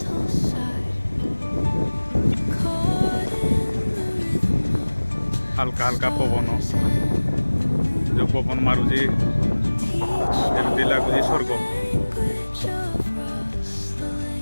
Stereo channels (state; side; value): inverted; both; correlation -1.00